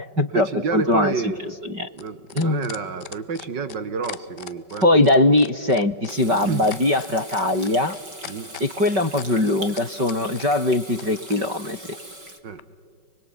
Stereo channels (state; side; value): late; left; 5.3 ms